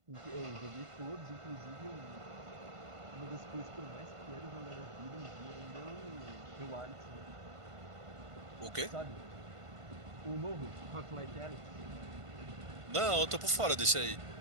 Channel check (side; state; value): left; late; 1.5 ms